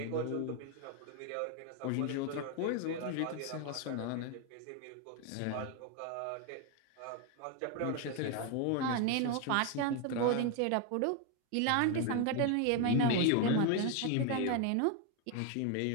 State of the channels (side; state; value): both; different; correlation 0.01